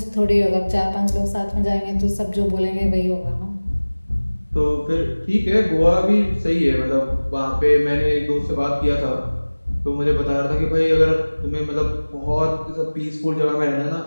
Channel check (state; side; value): inverted; both; correlation -1.00